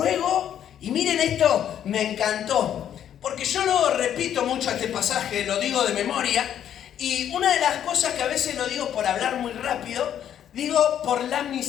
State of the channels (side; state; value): right; quieter; 10.0 dB